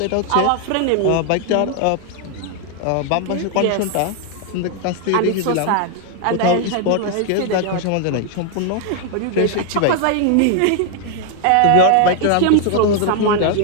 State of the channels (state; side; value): different; both; correlation 0.00